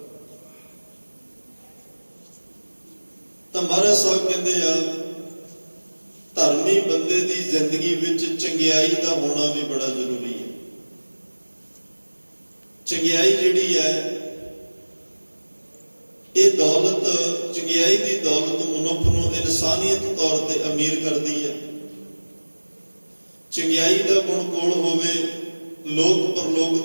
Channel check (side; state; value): both; inverted; correlation -1.00